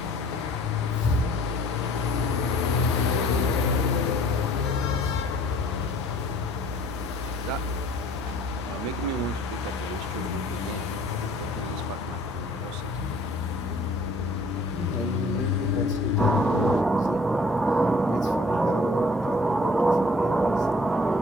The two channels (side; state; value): both; normal; correlation 0.54